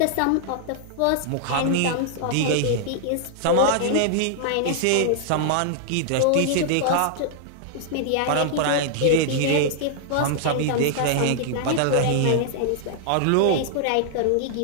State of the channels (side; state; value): both; different; correlation -0.01